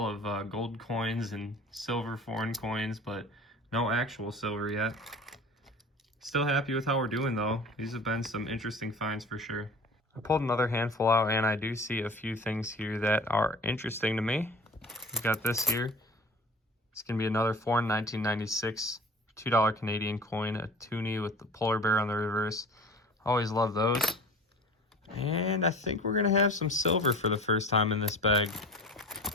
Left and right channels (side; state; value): both; normal; correlation 0.40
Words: of gold coins and silver foreign coins, but no actual silver yet. Still happy with how we're doing though. These have been some interesting finds for sure. I pulled another handful out and I do see a few things here that are interesting to me. We've got this here. It's gonna be another foreign 1996 $2 Canadian coin, a toonie with the polar bear on the reverse. Always love those. And I think we're gonna have some silver for the first time in this bag.